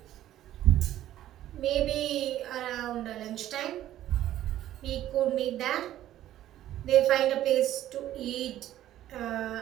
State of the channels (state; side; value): quieter; left; 13.0 dB